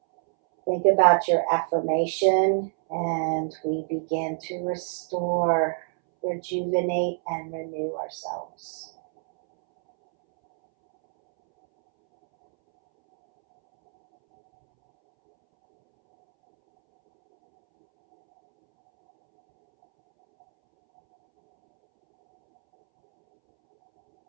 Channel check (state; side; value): silent; left; 62 dB below the other